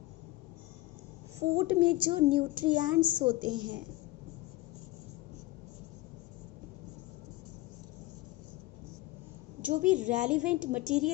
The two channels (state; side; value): quieter; right; 18.1 dB